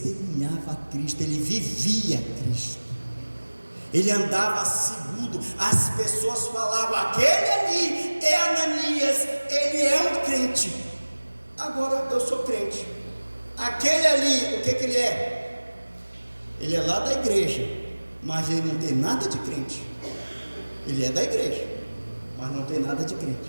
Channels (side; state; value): both; inverted; correlation -1.00